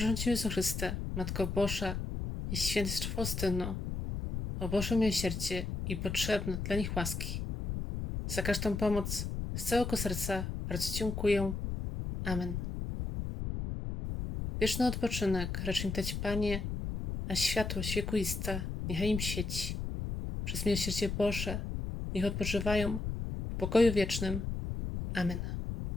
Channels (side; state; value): left; noise; rumble, 4 dB below the sound